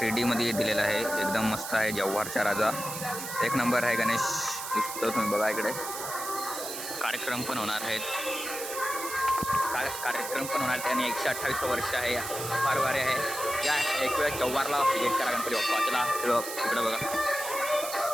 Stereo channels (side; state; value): right; noise; hiss, 7 dB below the sound